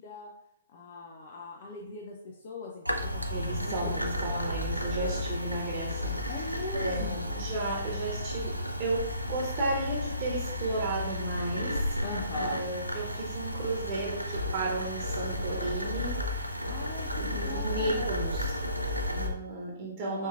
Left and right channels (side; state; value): both; inverted; correlation -0.59